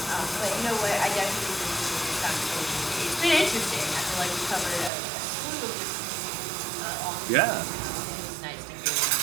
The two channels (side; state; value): left; drops out; at 4.9 s